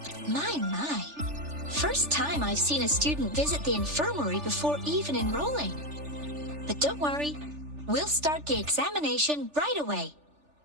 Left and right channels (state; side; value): late; left; 3.4 ms